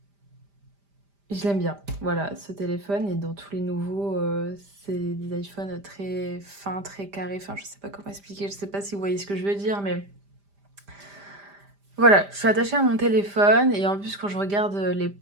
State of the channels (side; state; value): left; late; 5.0 ms